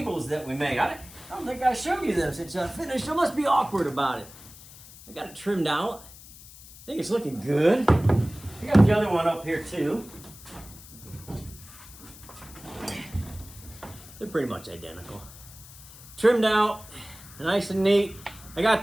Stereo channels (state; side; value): noise; left; hiss, 19 dB below the sound